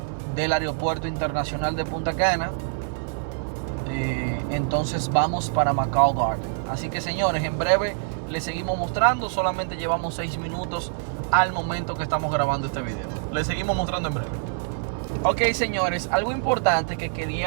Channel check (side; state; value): left; silent; 62 dB below the other